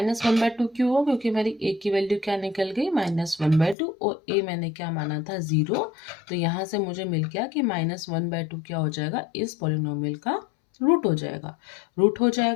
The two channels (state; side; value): drops out; right; at 3.8 s